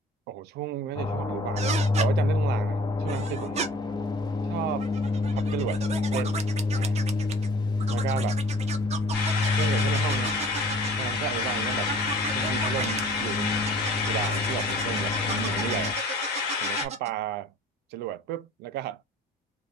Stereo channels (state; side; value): normal; both; correlation 0.49